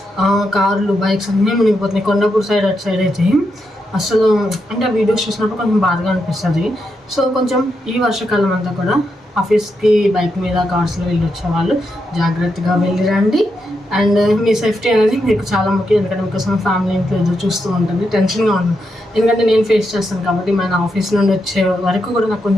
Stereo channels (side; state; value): both; normal; correlation 0.83